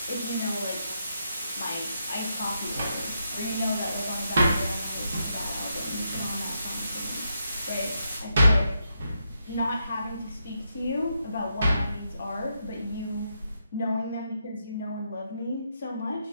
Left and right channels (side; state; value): both; inverted; correlation -0.81